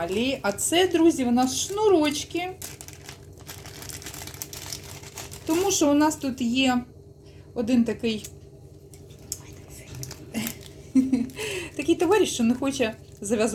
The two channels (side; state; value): both; identical; correlation 1.00